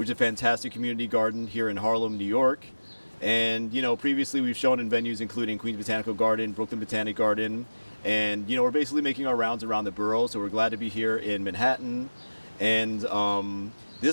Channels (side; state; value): both; inverted; correlation -1.00